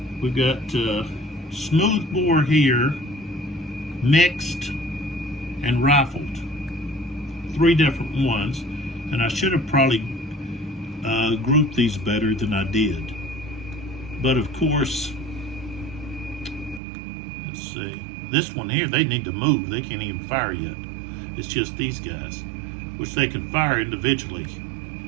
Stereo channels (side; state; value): left; drops out; at 16.8 s